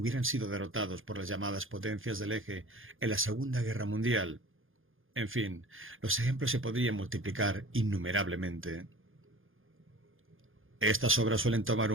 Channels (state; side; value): late; left; 0.59 ms